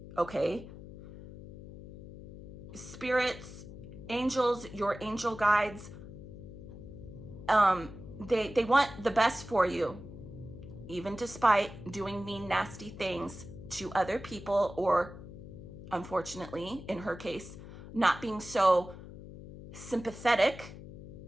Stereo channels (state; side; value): noise; left; hum, 14 dB below the sound